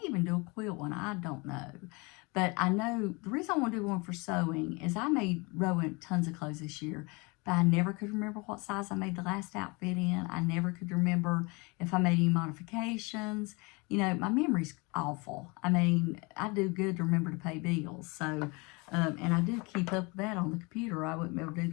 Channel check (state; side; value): quieter; right; 27.9 dB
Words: even do a quilt one. I don't know. But I know the reason I want to do one for sewing is I made Rowan tons of clothes this year. But I never could remember what size I made the last outfit in. I never could remember if I made any modifications. You know, my memory's awful. I mean, I do good to remember to pay bills. So, and I do keep up with that on the computer. I wouldn't be able to do